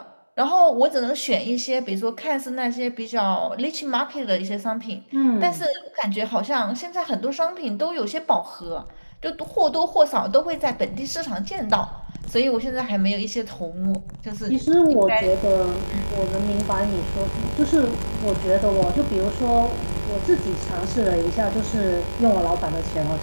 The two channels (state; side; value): inverted; both; correlation -1.00